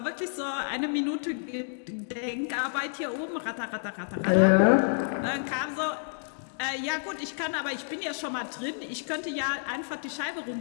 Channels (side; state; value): right; silent; digital silence